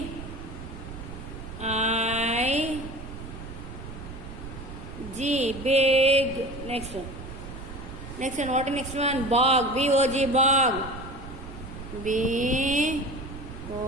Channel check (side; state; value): right; noise; rumble, 11 dB below the sound